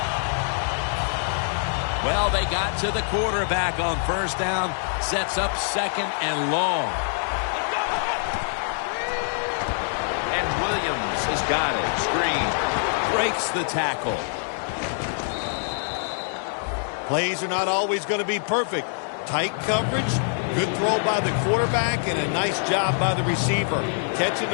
Well, they got to the quarterback on first down. Sets up second and long. And Williams has got it. Screen. Breaks the tackle. Plays are not always going to be perfect. Tight coverage, good throw by the quarterback, and a nice job by the receiver. Catching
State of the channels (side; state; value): right; silent; digital silence